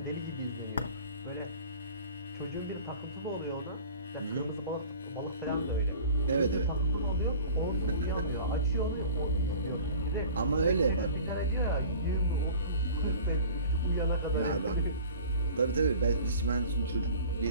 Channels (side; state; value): both; inverted; correlation -0.43